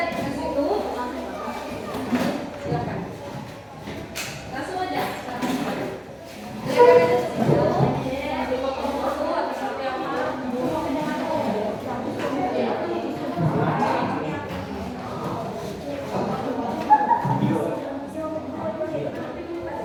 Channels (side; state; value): both; identical; correlation 1.00